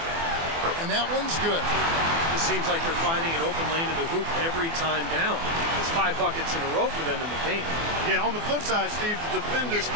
And that one's good. It seems like they're finding an open lane to the hoop every time down. It's 5 buckets in a row for them in the paint. Yeah, on the flip side, Steve, the defenders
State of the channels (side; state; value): left; late; 24 ms